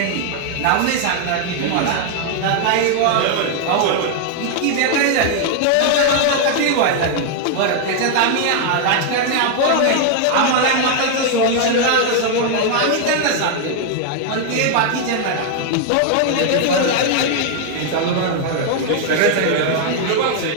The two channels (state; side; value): different; both; correlation 0.00